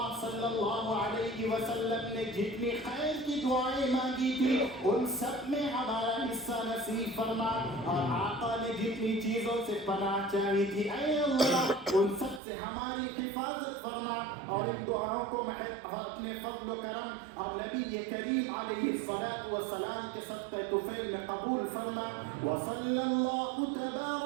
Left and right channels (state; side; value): drops out; left; at 12.4 s